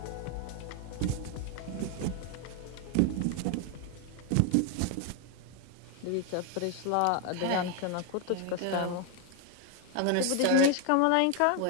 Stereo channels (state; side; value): different; both; correlation 0.01